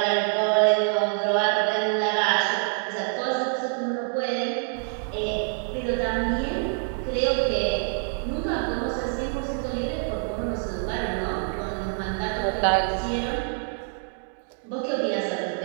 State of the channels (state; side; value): silent; left; 57 dB below the other